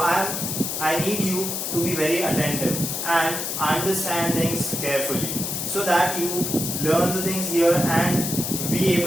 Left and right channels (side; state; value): left; noise; hiss, 3 dB below the sound